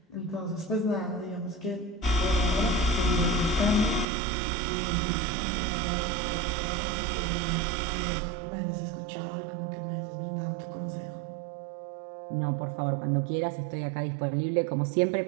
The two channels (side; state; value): left; drops out; at 4.0 s